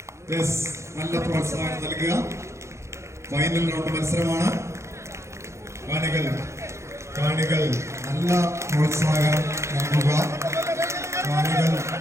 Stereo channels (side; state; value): left; late; 0.14 ms